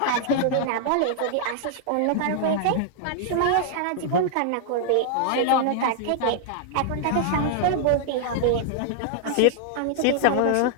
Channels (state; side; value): different; both; correlation 0.00